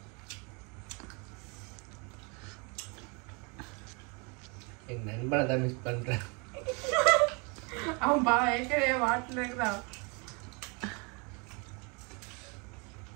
என் நண்பனை தான் மிஸ் பண்றேன். அவன் ஏற்கனவே வாட்டில் இருக்கிறான்.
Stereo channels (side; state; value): left; quieter; 31.8 dB